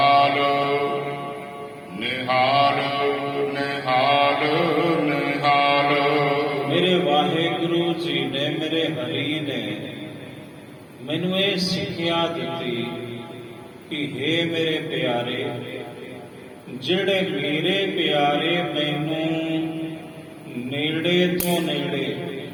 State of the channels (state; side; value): identical; both; correlation 1.00